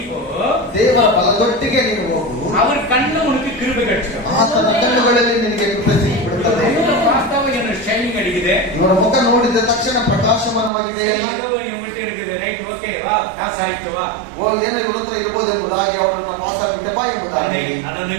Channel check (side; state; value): left; drops out; at 10.7 s